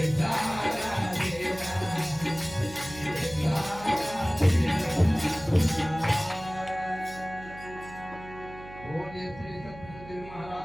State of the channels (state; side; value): noise; right; hum, 16 dB below the sound